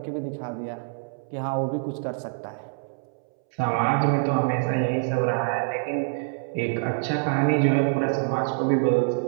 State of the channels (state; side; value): silent; left; 61 dB below the other